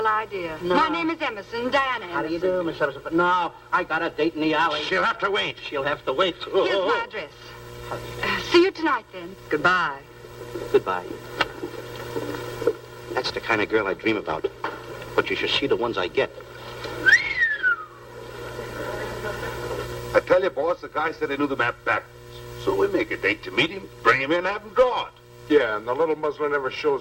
idea. No. My name is Emerson, Diana Emerson. How do you do, Miss Emerson? But no, I got a date in the alley. She'll have to wait. She'll have to wait. Here's my address. See you tonight, then. Goodbye. Goodbye. That's the kind of girl I dream about. But you should see the ones I get. I tell you, boss, the guy said he knew the map backwards. So we make a date to meet him, bring him in, have him draw it. Yeah, and the little muzzler never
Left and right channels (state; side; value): identical; both; correlation 1.00